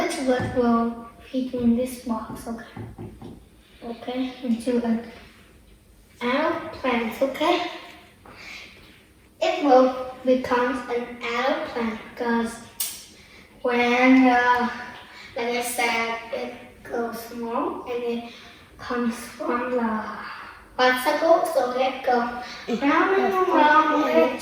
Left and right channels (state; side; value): identical; both; correlation 1.00